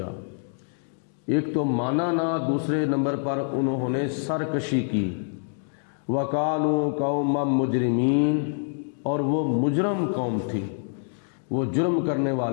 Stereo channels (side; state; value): right; silent; digital silence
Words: ایک تو مانا نہ، دوسرے نمبر پر انہوں نے سرکشی کی۔ وَقَالُوا قَوْمًا مُجْرِمِينَ، اور وہ مجرم قوم تھی، وہ جرم کرنے